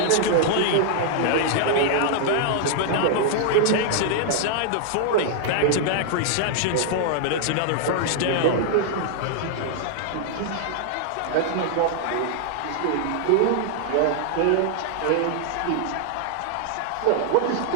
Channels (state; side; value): different; both; correlation -0.01